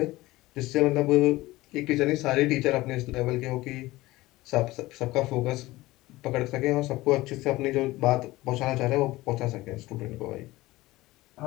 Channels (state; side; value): quieter; right; 18.7 dB